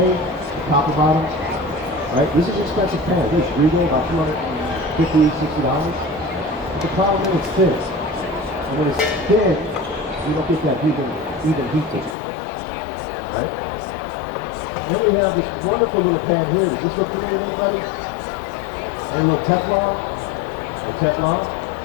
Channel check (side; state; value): right; drops out; at 12.2 s